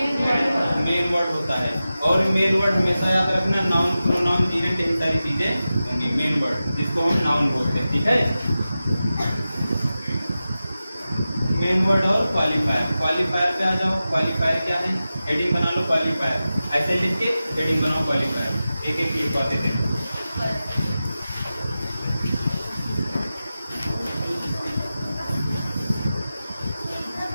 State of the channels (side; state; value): both; inverted; correlation -0.94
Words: वर्ड होता है। और मेन वर्ड हमेशा याद रखना, नाउन, प्रोनाउन, जीरेंट, यही सारी चीजें होंगी मेन वर्ड, जिसको हम नाउन बोलते हैं। ठीक है, मेन वर्ड और क्वालिफायर। क्वालिफायर पे आ जाओ। क्वालिफायर क्या है? हेडिंग बना लो क्वालिफायर, ऐसे लिख के हेडिंग बनाओ क्वालिफायर। एक एक लिखवाते थे।